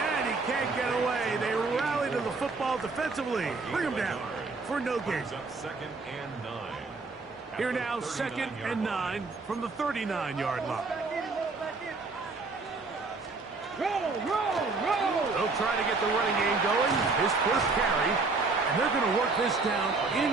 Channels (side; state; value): left; quieter; 3.9 dB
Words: he can't get away. They rally to the football defensively. Bring him down for no gain. Here now, 2nd and 9 from the 39-yard line. They'll try to get the running game going. His first carry. And they're going to work this down